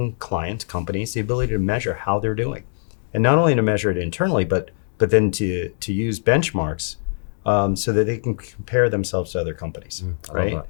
clients, companies, the ability to measure how they're doing. And not only to measure it internally, but then to use benchmarks so that they can compare themselves to other companies, right?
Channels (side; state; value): right; silent; digital silence